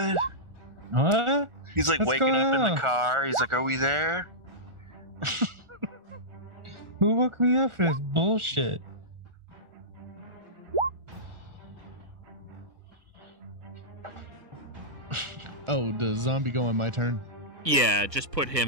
What? He's What's waking going up in on? the car. He's like, are we there? Who woke me up for this bullshit? Oh, does zombie go on my turn? Yeah, just put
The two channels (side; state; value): left; late; 1.4 ms